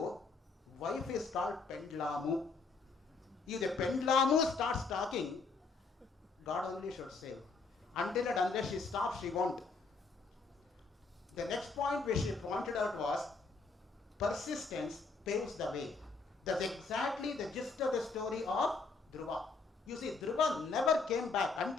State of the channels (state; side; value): quieter; right; 4.2 dB